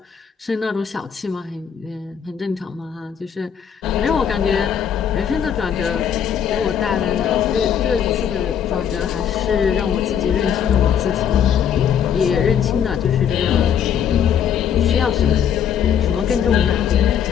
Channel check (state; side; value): quieter; right; 8.5 dB